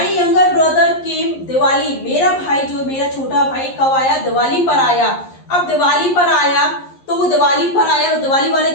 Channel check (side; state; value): right; late; 11 ms